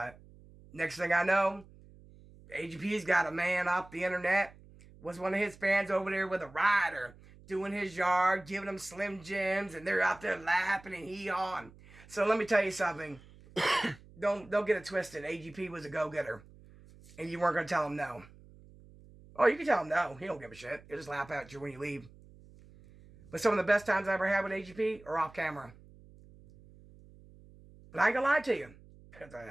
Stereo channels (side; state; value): right; noise; hum, 23 dB below the sound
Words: next thing I know, AGP's got a man off the internet. Was one of his fans over there with a rider doing his yard, giving him Slim Jims, and they're out there laughing and hee-hawing. So let me tell you something. Don't get it twisted. AGP was a go-getter, and you weren't going to tell him no. Oh, you can tell him no. He don't give a shit. He'll just laugh at you when you leave. But some of the best times I ever had with AGP are off camera. But I ain't gonna lie to you. There's a